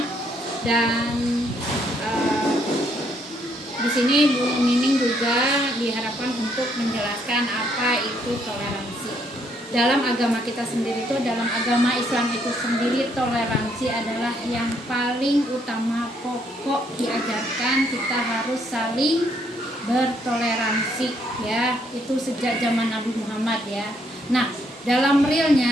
Dan di sini Bu Nining juga diharapkan untuk menjelaskan apa itu toleransi. Dalam agama kita sendiri itu, dalam agama Islam itu sendiri, toleransi adalah yang paling utama, pokok diajarkan kita harus saling bertoleransi ya. Itu sejak zaman Nabi Muhammad ya. Nah, dalam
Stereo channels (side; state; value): both; normal; correlation 0.71